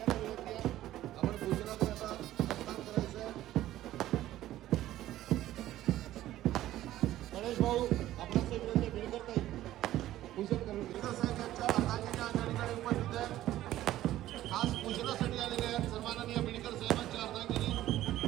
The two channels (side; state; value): left; quieter; 14.1 dB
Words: गणेश भाऊ आपणास विनंती बीडकर ताई पूजन करून बीडकर साहेब यांच्या हाताच्या या ठिकाणी उपस्थित आहेत. खास पूजनासाठी आलेले आहेत सन्माननीय बीडकर साहेबांच्या अर्धांगिनी.